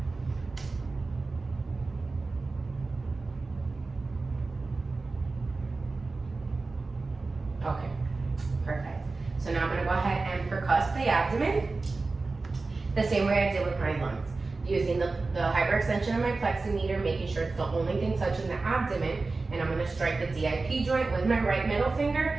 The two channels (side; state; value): left; quieter; 3.7 dB